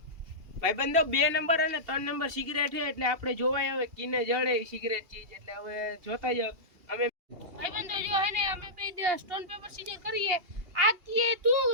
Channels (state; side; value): late; left; 2.7 ms